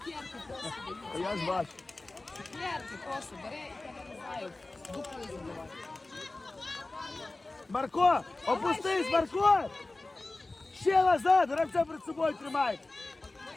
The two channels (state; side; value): quieter; right; 3.0 dB